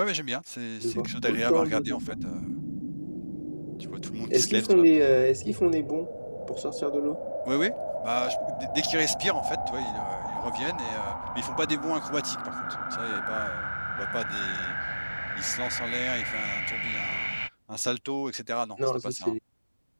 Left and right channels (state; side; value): inverted; both; correlation -1.00